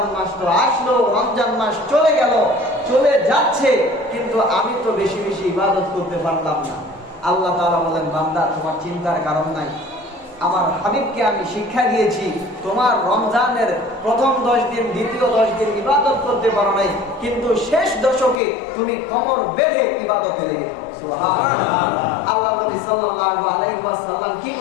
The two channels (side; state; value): right; drops out; at 18.4 s